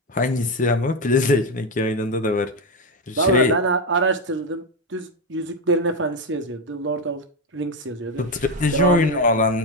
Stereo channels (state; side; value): normal; both; correlation 0.10